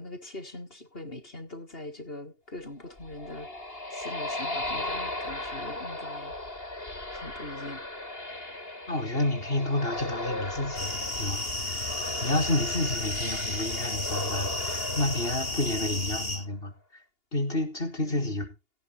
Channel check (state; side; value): late; right; 2.8 ms